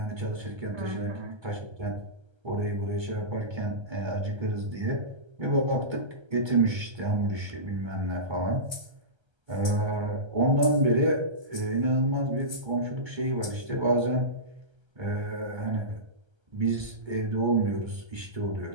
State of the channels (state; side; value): late; left; 1.3 ms